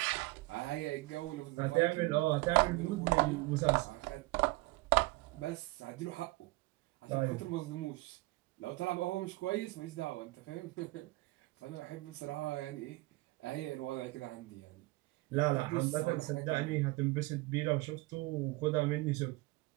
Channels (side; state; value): left; quieter; 21.7 dB